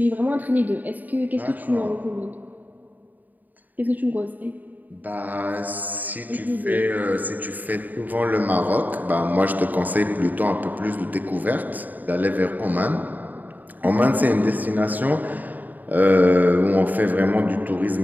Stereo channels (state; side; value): late; left; 0.083 ms